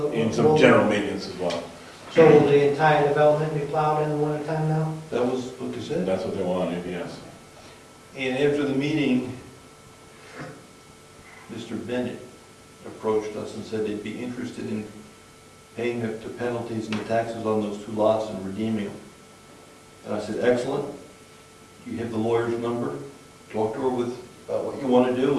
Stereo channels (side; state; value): both; identical; correlation 1.00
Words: And some general maintenance as well. So will the entire development be plowed in the wintertime now? That was what they said. That's what they wanted, yes. And after the meeting, Mr. Bennett approached us and said they'd be interested in paying the penalties and the taxes on those 2 lots and redeeming them. And I said, excellent. You have the lawyer's number. Talk to her about what you want to